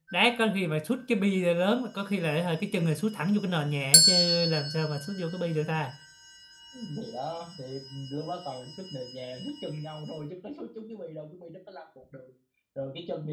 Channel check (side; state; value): both; identical; correlation 1.00